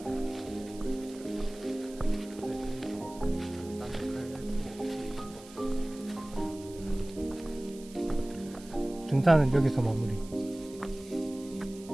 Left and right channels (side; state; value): right; noise; hiss, 20 dB below the sound